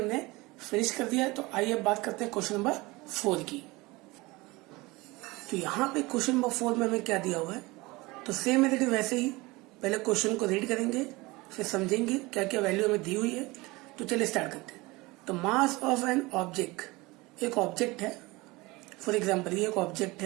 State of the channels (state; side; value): quieter; left; 22.5 dB